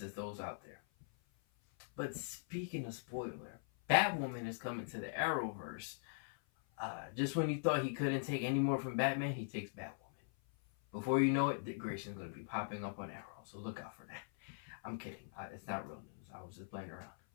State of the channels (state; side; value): silent; right; 50 dB below the other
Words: those out there. But speaking of spoiler, Batwoman is coming to the Arrowverse. Just when you thought he couldn't take any more from Batman, he takes Batwoman. Before you know it, Dick Grayson's going to be popping up on Arrow, so look out for that. I'm kidding. It's not real news. I was just playing around.